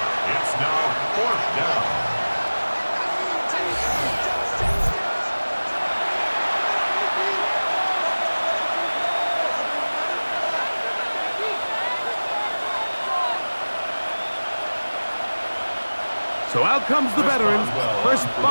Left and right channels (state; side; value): inverted; both; correlation -1.00